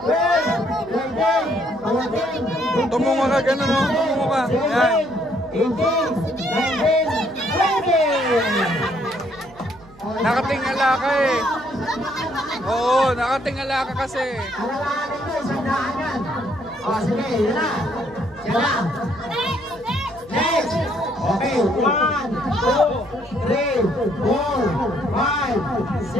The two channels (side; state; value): right; noise; hum, 25 dB below the sound